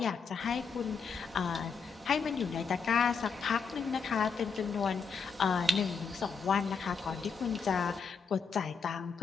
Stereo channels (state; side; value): quieter; right; 5.6 dB